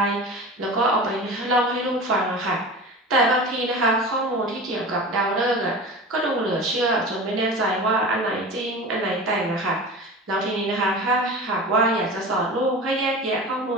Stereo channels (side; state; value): both; normal; correlation 0.33